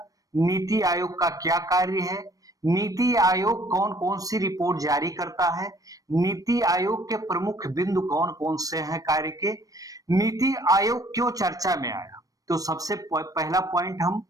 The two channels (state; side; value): late; left; 0.17 ms